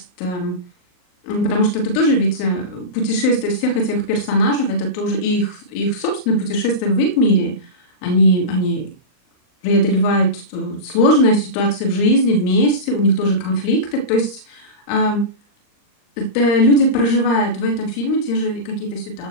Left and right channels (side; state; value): right; late; 39 ms